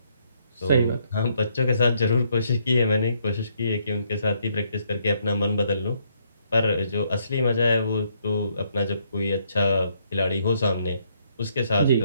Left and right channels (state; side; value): inverted; both; correlation -0.72